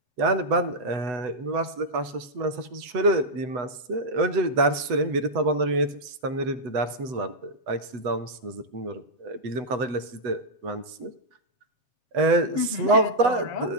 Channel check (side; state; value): left; late; 8.0 ms